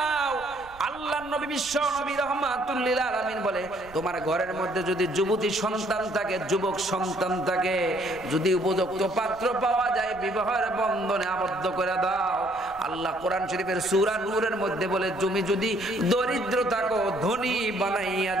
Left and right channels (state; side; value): noise; right; rumble, 22 dB below the sound